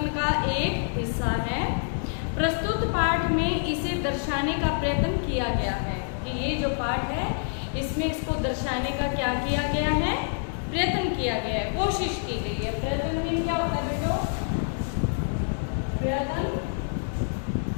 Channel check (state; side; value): silent; right; digital silence